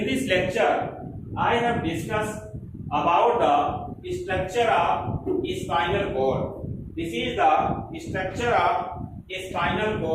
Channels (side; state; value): both; identical; correlation 1.00